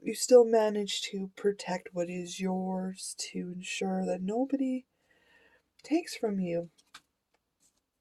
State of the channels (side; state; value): both; identical; correlation 1.00